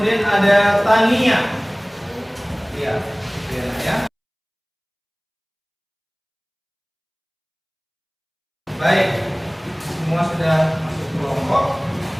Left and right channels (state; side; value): identical; both; correlation 1.00